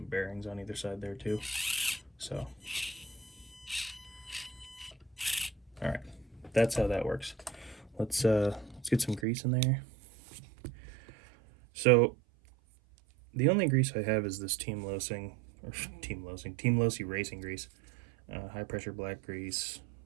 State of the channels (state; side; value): drops out; left; at 9.2 s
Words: bearings on either side there too. So, all right, that's how that works. Let's get some grease in there. So the only grease I have is this Team Losi racing grease, high pressure black grease,